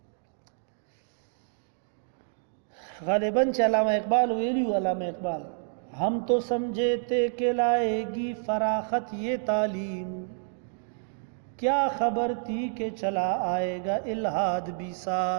गालिबन चे अल्लामा इकबाल वेली अल्लामा इकबाल हम तो समझे थे कि लाएगी फराखत ये तालीम क्या खबर थी कि चला आएगा इल्हाद भी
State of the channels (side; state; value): left; silent; digital silence